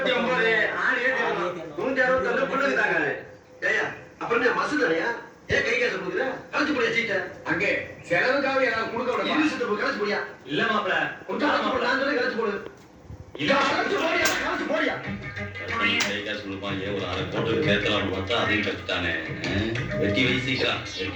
ஆள் ஏத்திரலாம் 169 புள்ளுக்கு தாங்க. ஏயா அப்புறம் என்ன மசுதானயா? ஏன் கை காசு கொடுக்குற? கலச்சு போடியா சீட்ட. அங்கே செலவுக்காக யாராவது கொடுக்க விட யூனிவர்சிட்டி போய் கலச்சு போடியா. இல்ல மாப்ள கொடுத்தா மாப்ள நான் சொல்றேன் கலச்சு போடு. இல்ல கலச்சு போடியா. கை காசு கொடுப்பாங்க ஒரு அரை கோட்டுக்கு கேட்கலாம்னு பார்த்தா அதையும் கட்டுத்தானே. வெட்டி வீசிக்கலாம்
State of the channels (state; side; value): identical; both; correlation 1.00